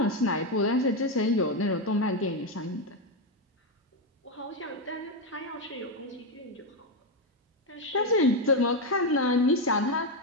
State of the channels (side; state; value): both; normal; correlation 0.07